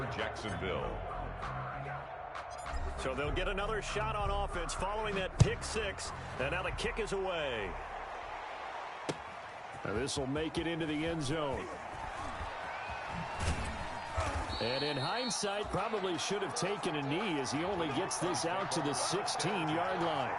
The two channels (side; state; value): both; identical; correlation 1.00